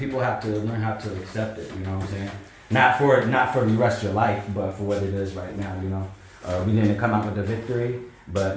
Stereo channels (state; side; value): identical; both; correlation 1.00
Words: have to learn how to accept it, you know what I'm saying? Not for the rest of your life, but for what it is right now, We didn't come out with a victory,